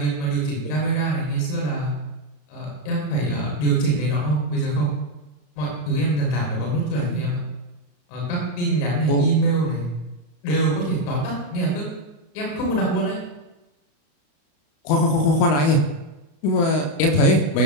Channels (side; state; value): right; late; 34 ms